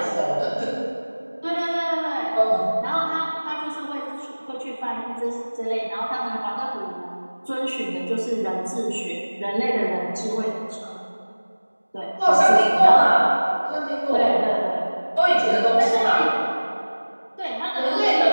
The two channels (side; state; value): both; inverted; correlation -1.00